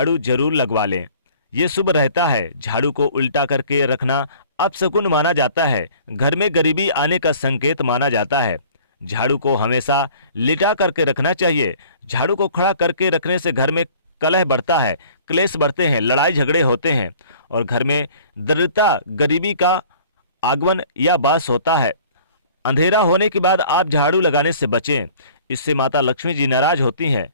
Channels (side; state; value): both; inverted; correlation -0.50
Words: जरूर लगवा लें, ये शुभ रहता है। झाड़ू को उल्टा करके रखना अपशकुन माना जाता है, घर में गरीबी आने का संकेत माना जाता है। झाड़ू को हमेशा लिटा करके रखना चाहिए। झाड़ू को खड़ा करके रखने से घर में कलह बढ़ता है, क्लेश बढ़ते हैं, लड़ाई झगड़े होते हैं और घर में दरिद्रता गरीबी का आगमन या वास होता है। अंधेरा होने के बाद आप झाड़ू लगाने से बचें, इससे माता लक्ष्मी जी नाराज होती हैं।